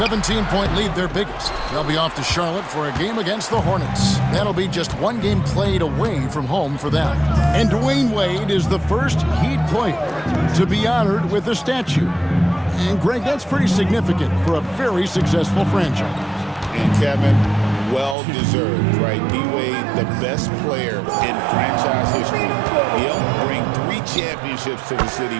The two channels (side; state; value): left; drops out; at 18.2 s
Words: lead, their biggest. They'll be off to Charlotte for a game against the Hornets. That'll be just one game played away from home for them. And Dwayne Wade is the first Heat player to be honored with a statue. And Greg, that's pretty significant for a very successful franchise. And Kevin, well-deserved, right? D-Wade, the best player in franchise history. He helped bring 3 championships to the city,